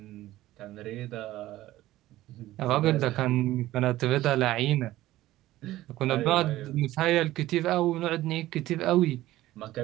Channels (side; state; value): left; quieter; 15.8 dB